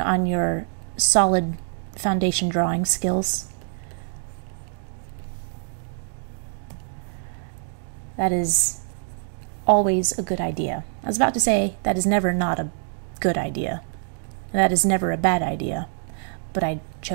your solid foundation drawing skills. That is always a good idea. I was about to say that is never not a good idea. That is never a bad idea. But I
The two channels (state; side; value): silent; left; digital silence